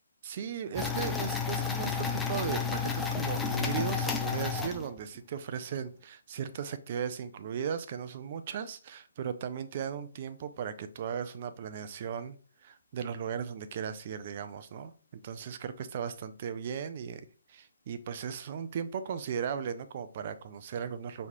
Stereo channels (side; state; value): both; inverted; correlation -0.31